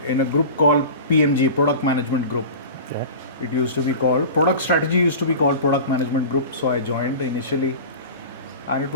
a group called PMG, Product Management Group. Okay. It used to be called, Product Strategy used to be called Product Management Group, so I joined initially. And it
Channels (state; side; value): inverted; both; correlation -0.35